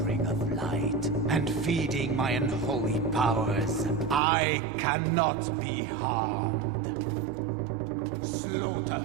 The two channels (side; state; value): left; drops out; at 4.2 s